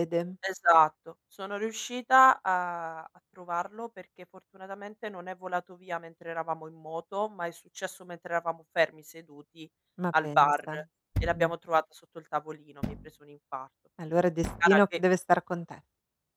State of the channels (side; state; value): both; identical; correlation 1.00